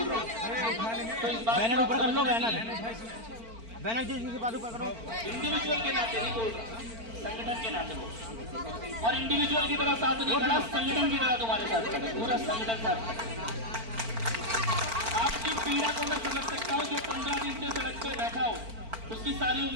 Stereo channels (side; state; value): left; late; 4.4 ms